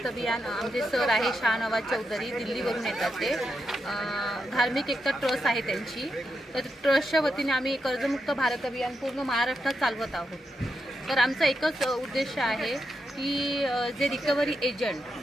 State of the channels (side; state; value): both; normal; correlation 0.85